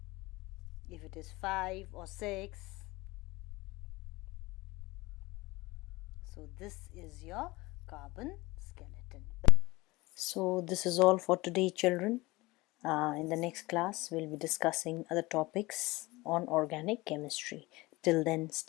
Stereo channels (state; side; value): quieter; right; 21.4 dB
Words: if it is 5 or 6, so this is your carbon skeleton. So this is all for today, children. In the next class, we'll be discussing other topics on organic chemistry. Till then,